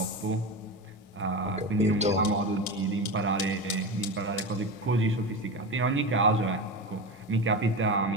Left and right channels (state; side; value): normal; both; correlation 0.22